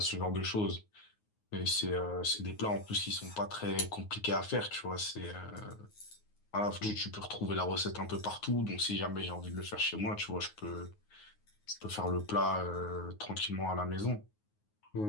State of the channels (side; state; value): right; late; 9.5 ms